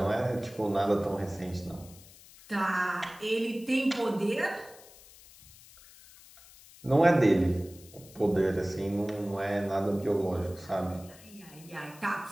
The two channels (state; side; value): noise; left; hiss, 22 dB below the sound